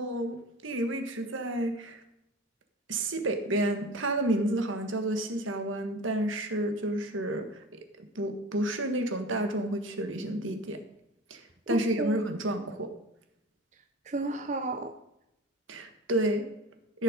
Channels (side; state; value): both; normal; correlation 0.36